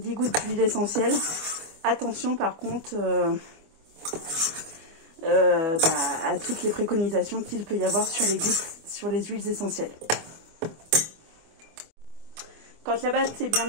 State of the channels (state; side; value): late; left; 25 ms